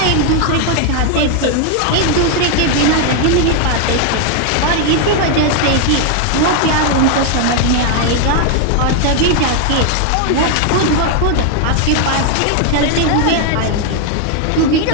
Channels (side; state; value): both; different; correlation 0.00